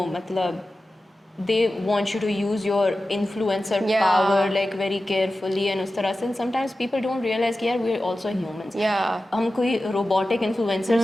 मतलब they want you to use your influencer Yeah. power like very carefully and उस तरह से and sometimes people don't realize कि यार we're also humans. Yeah. हम कोई रोबोटिक इन्फ्लुएंसर्स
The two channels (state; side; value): normal; both; correlation 0.94